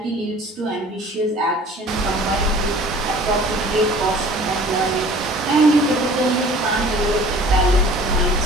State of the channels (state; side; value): normal; both; correlation 0.48